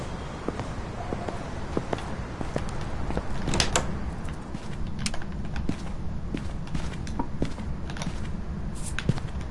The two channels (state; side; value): identical; both; correlation 1.00